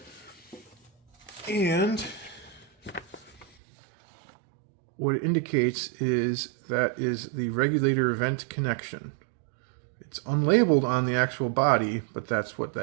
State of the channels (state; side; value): drops out; left; at 3.5 s